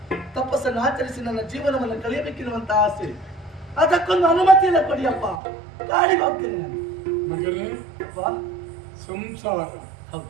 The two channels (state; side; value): drops out; left; at 5.4 s